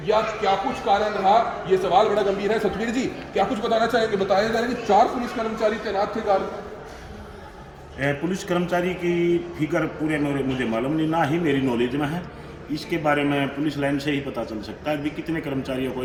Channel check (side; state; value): both; identical; correlation 1.00